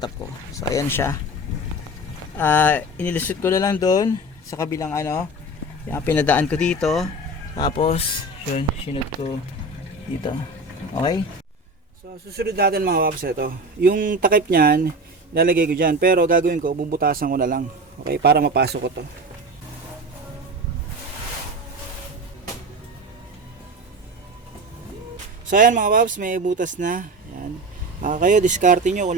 ko. So ayan siya. Inilusot ko na lang doon sa kabilang yung pinadaan ko dito. Tapos yun, sinod ko dito. Okay? So susunod natin mga paps ito. Yung takip niyan, lalagay ko dyan. Pero gagawin ko, bubutasan ko na lang. Okay? Para mapasok ko to. So ayan mga paps, may butas na. Ayan. Kayo diskarte nyo kung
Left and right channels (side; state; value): both; normal; correlation 0.29